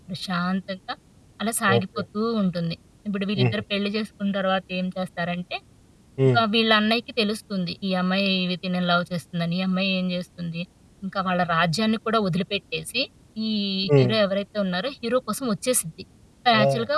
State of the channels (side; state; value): both; identical; correlation 1.00